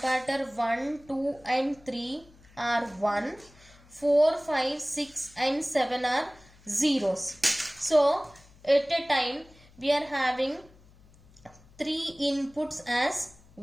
1, 2 and 3 are 1, 4, 5, 6 and 7 are zeros. So at a time we are having 3 inputs as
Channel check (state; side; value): noise; left; hum, 26 dB below the sound